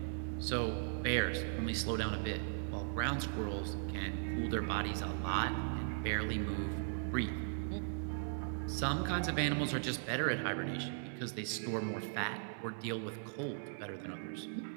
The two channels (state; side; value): silent; left; digital silence